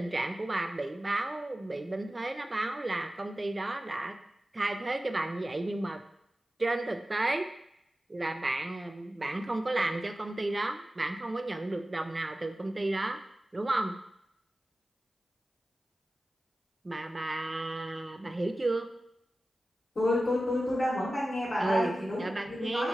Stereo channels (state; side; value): normal; both; correlation 0.95